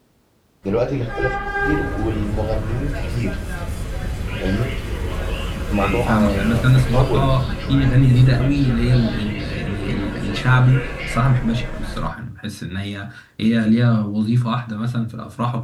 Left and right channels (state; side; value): identical; both; correlation 1.00